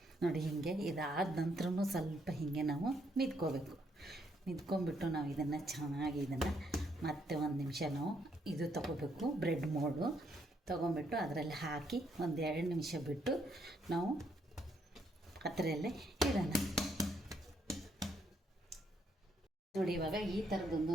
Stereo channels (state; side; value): normal; both; correlation 0.73